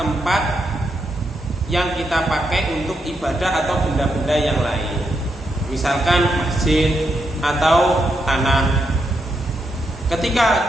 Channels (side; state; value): both; normal; correlation 0.82